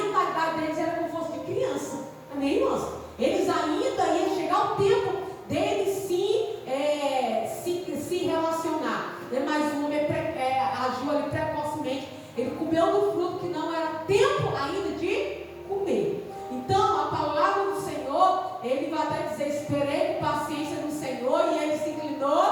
deles era como se fosse de criança, amém, irmãos? Eles ainda iam chegar o tempo deles se relacionar, né? Mas o homem agiu ali precocemente, ele comeu do fruto que não era tempo ainda de comer. Então a palavra do Senhor, ele vai até dizer, esperei com paciência no Senhor e ele se inclinou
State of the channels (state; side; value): identical; both; correlation 1.00